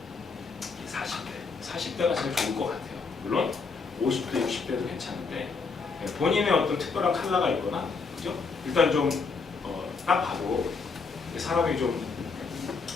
40대. 40대가 제일 좋을 것 같아요. 물론 50대, 60대도 괜찮은데 본인의 어떤 특별한 컬러가 있거나 그죠? 일단 좀 딱 봐도 사람이 좀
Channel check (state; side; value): quieter; right; 4.7 dB